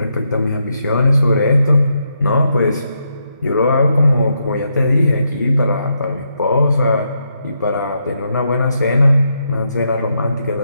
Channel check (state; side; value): inverted; both; correlation -0.80